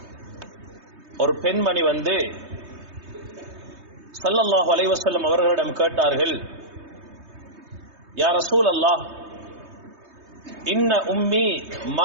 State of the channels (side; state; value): left; late; 3.2 ms